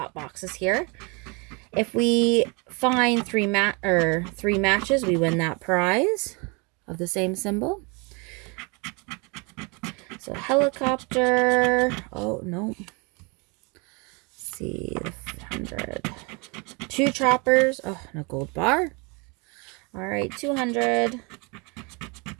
boxes here. If we find three matches, we win that prize of the same symbol. So helicopter. Oh no. Let's see, 100. Two choppers. Oh, no gold bar. All right, 200.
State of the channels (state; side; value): quieter; left; 30.3 dB